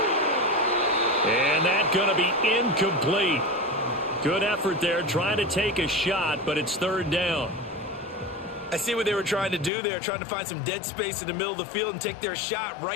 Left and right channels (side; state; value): right; drops out; at 9.7 s